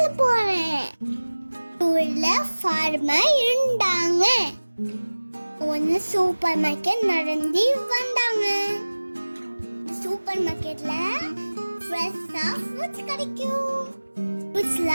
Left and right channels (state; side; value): inverted; both; correlation -1.00